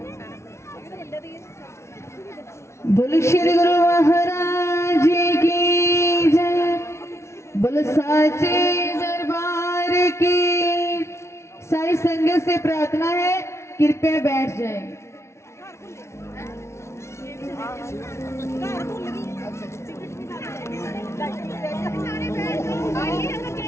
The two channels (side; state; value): right; late; 0.13 ms